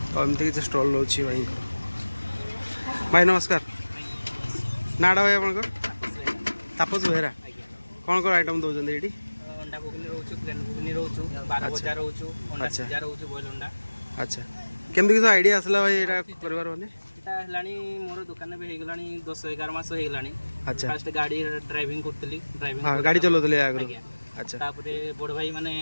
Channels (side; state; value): both; inverted; correlation -1.00